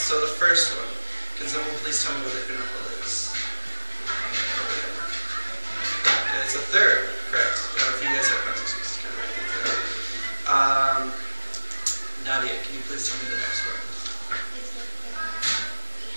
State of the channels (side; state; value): both; inverted; correlation -1.00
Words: the first one, can someone please tell me what the interval is? Okay, it's a third. Correct. If you guys have pencils, you just kind of write things down. Nadia, can you please tell me the next one?